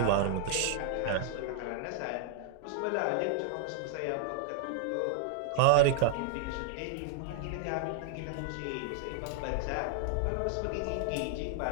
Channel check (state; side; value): different; both; correlation 0.00